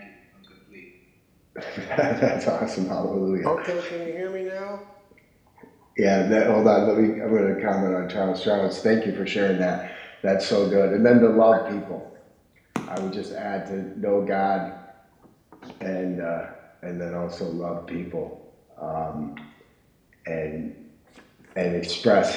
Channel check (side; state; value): both; identical; correlation 1.00